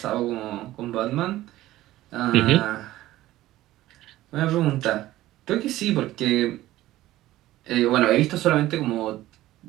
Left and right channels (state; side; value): quieter; left; 15.6 dB